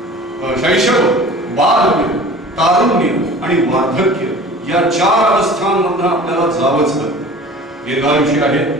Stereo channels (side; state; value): both; normal; correlation 0.42